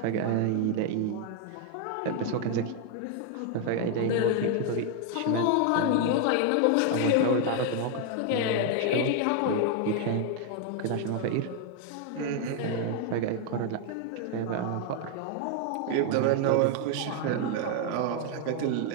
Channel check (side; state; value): both; different; correlation 0.00